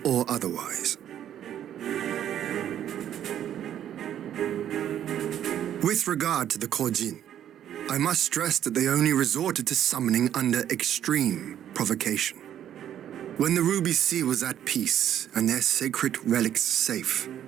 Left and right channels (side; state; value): left; quieter; 10.6 dB